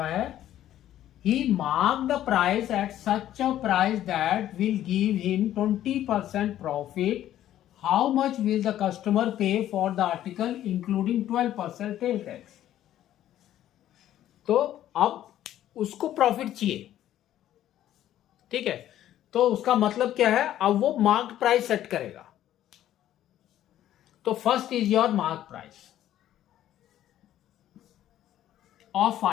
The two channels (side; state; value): right; quieter; 12.3 dB